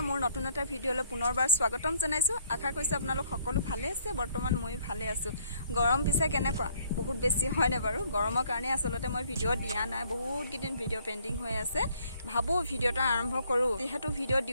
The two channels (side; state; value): both; inverted; correlation -0.65